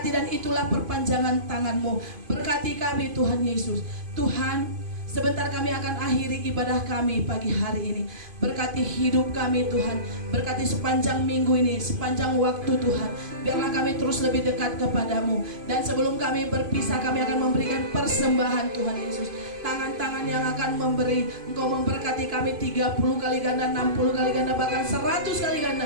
dan itulah perpanjangan tangan-Mu. Berkati kami Tuhan Yesus. Tuhan, sebentar kami akan akhiri ibadah kami pagi hari ini. Berkati hidup kami Tuhan. Berkati sepanjang minggu ini, sepanjang waktu Tuhan. Biarlah kami terus lebih dekat kepadamu. Dan sebelum kami berpisah, kami akan memberikan persembahan Tuhan Yesus. Tangan-tangan yang akan memberi, Engkau memberkati kami 30 kali ganda, 60 kali ganda, bahkan 100 kali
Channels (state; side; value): late; left; 2.5 ms